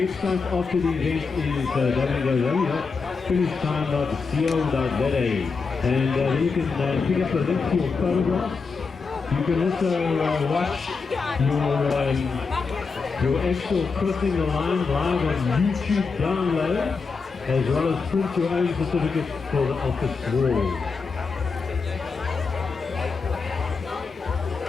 after the event is www.finishtime.co.za, and then you can pick up a link to your photographs. You can also watch your actual crossing the line live on YouTube download, as well as print your own certificate for the office wall.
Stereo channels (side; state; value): right; quieter; 4.8 dB